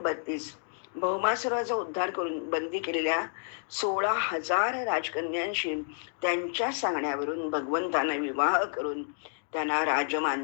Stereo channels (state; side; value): silent; right; digital silence